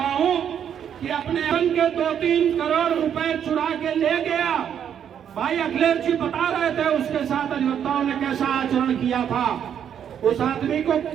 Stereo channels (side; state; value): left; quieter; 8.8 dB